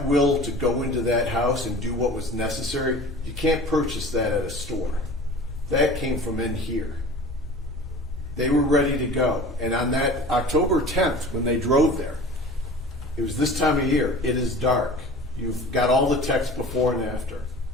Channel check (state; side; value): normal; both; correlation 0.41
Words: will to go into that house and do what was necessary, you can't purchase that at a store. That came from in here. They were ready to go. And on that October 10th, when they drove there, it was this time of year, it is dark. You've got all the text before and after.